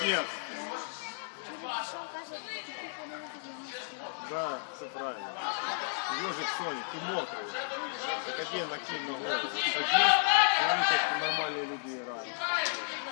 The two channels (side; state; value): right; silent; 56 dB below the other